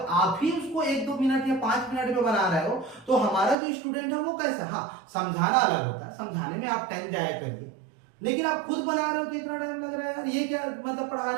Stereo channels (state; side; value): drops out; left; at 3.6 s